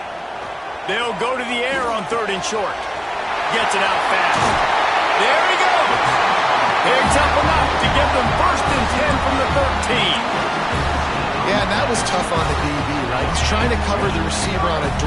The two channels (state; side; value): identical; both; correlation 1.00